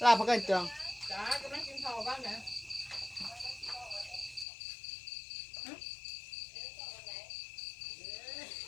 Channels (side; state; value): right; drops out; at 4.5 s